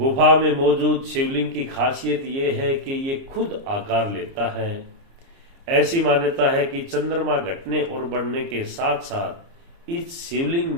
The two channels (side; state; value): left; late; 29 ms